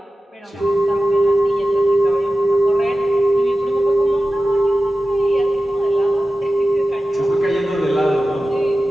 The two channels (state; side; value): normal; both; correlation 0.94